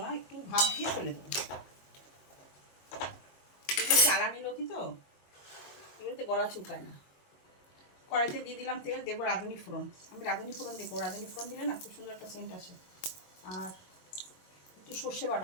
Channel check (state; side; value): late; right; 22 ms